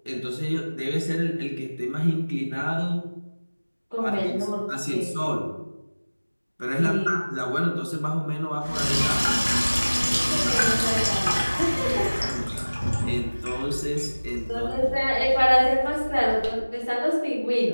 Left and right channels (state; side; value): inverted; both; correlation -1.00